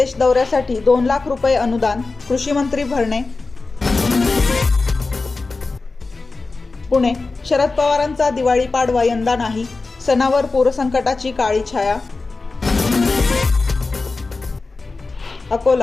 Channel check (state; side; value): quieter; right; 3.8 dB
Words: दौऱ्यासाठी 2 लाख रुपये अनुदान, कृषी मंत्री भरणे. पुणे, शरद पवारांचा दिवाळी पाडवा यंदा नाही, सणावर पूरसंकटाची काळी छाया.